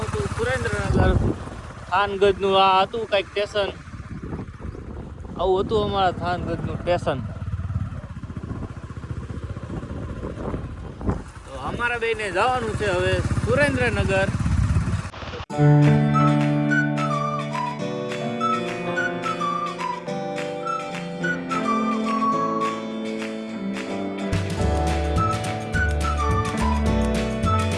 હતું સુરેન્દ્રનગર। થાનગઢનું આ હતું કંઈક સ્ટેશન, આવું હતું અમારા થાનગઢનું સ્ટેશન। તો અમારા બેને જવાનું છે હવે સુરેન્દ્રનગર।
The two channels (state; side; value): identical; both; correlation 1.00